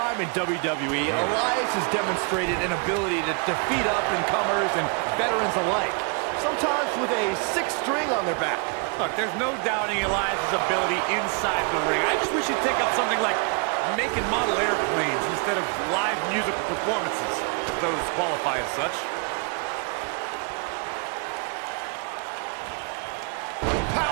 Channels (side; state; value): left; quieter; 36.9 dB